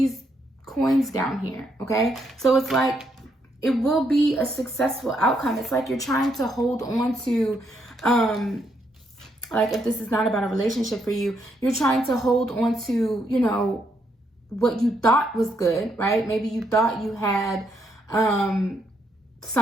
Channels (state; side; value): normal; both; correlation 0.76